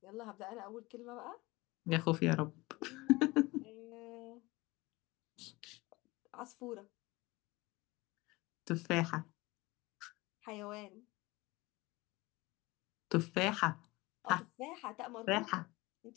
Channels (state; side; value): quieter; right; 21.8 dB